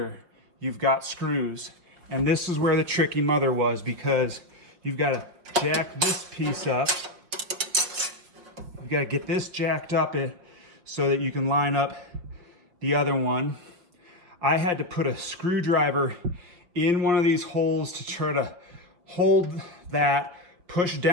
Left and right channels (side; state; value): left; late; 5.4 ms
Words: you've got screws. And this is where the tricky mother was, because you've got to jack this piece up. You've got to get this jacked up so that you can line up the other one. I had to put a screwdriver in one of these holes to try to hold that, push